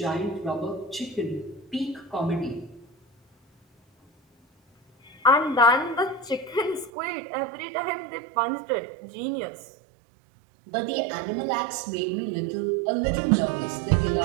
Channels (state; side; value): drops out; left; at 6.9 s